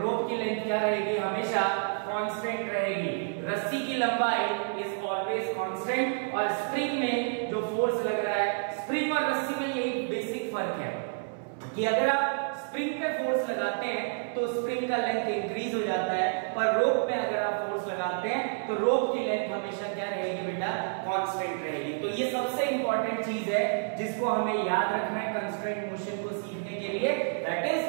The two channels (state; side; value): silent; left; 58 dB below the other